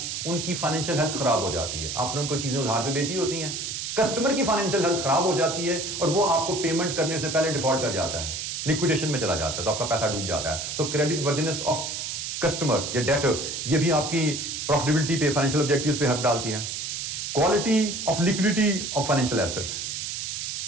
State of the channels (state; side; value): noise; right; hiss, 4 dB below the sound